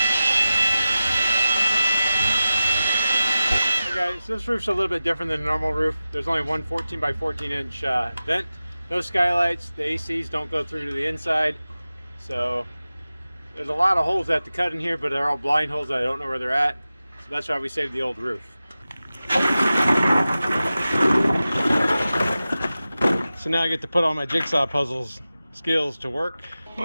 Guys, this roof's a little bit different than a normal roof. There's only one 14 by 14 inch vent. No skylights. The ACs don't go through to the inside. So there's a lot of holes that have to cut in here, but they're all blind holes that I don't know where they're at. So that's why we saved the old roof. So now I get to put all my jigsaw puzzles skills to work.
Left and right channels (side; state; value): both; inverted; correlation -0.95